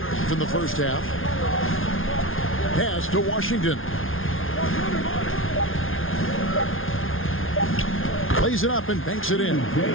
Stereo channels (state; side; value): late; right; 0.59 ms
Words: in the first half. Pass to Washington. Plays it up and banks it in.